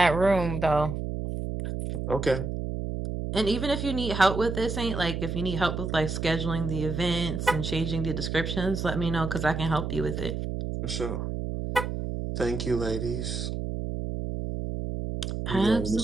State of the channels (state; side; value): noise; right; hum, 3 dB below the sound